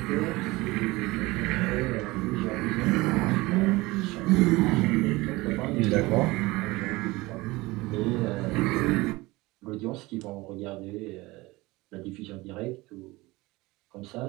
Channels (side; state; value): left; quieter; 21.4 dB